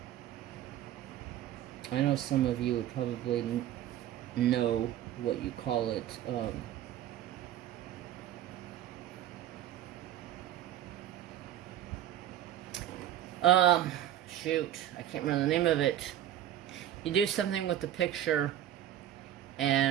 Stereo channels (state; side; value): quieter; left; 11.9 dB